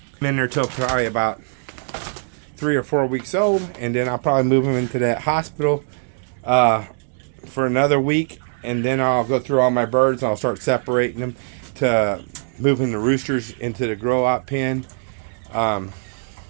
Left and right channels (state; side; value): silent; left; digital silence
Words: probably about 3 or 4 weeks old, and then I'll probably move them into that hospital for another week, and then I'll go through all my birds and I'll start separating them to moving the roosters into the grow out pen